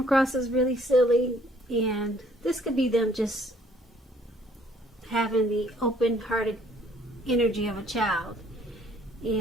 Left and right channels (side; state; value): both; normal; correlation 0.61